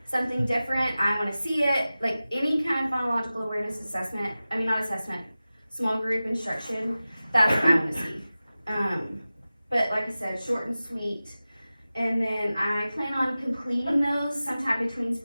something different, I want to see it, like any kind of phonological awareness assessment, small group instruction, that's what I want to see. But like I said, short and sweet. And then I plan on completing those sometime between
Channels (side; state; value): both; inverted; correlation -0.96